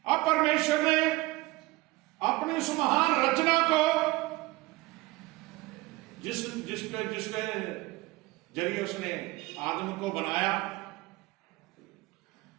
अब परमेश्वर ने अपनी उस महान रचना को जिसके जरिए उसने आदम को बनाया,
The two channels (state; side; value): quieter; left; 20.7 dB